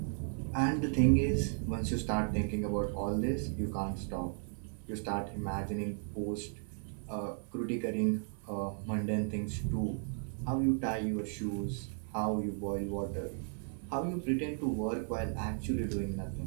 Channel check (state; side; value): silent; left; 54 dB below the other